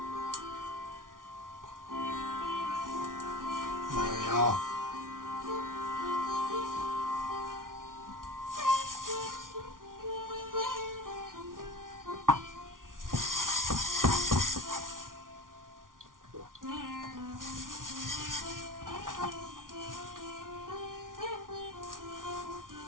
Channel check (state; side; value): late; left; 0.89 ms